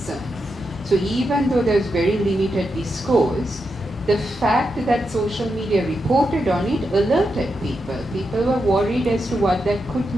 So even though there's very limited discourse, the fact that social media reported on it alerted people. People were worried as to what that could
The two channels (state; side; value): normal; both; correlation 0.86